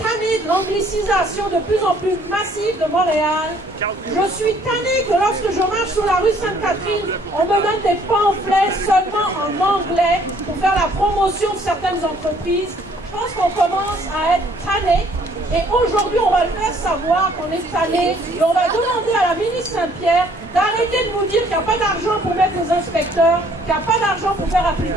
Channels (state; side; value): normal; both; correlation 0.61